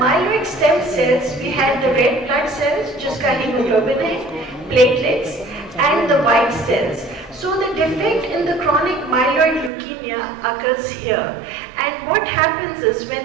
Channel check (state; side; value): drops out; left; at 9.7 s